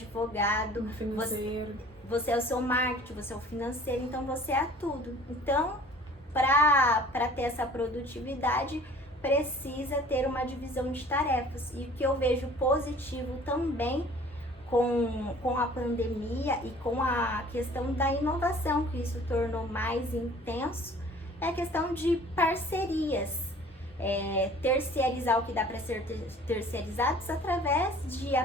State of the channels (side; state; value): both; normal; correlation 0.50